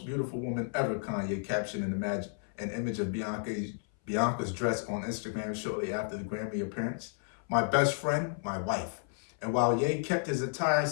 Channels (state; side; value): silent; right; 56 dB below the other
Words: beautiful woman ever, Kanye captioned an image of Bianca's dress on Instagram shortly after the Grammy appearance. My best friend, my wife. And while Ye kept his attire